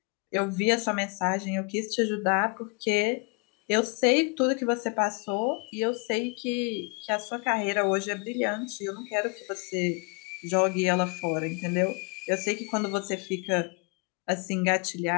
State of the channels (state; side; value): quieter; right; 33.3 dB